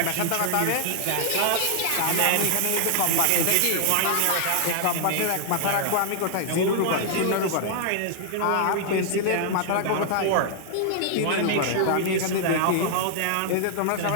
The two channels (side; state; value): both; different; correlation -0.01